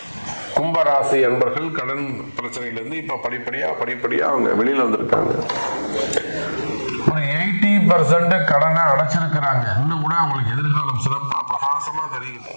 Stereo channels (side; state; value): both; inverted; correlation -1.00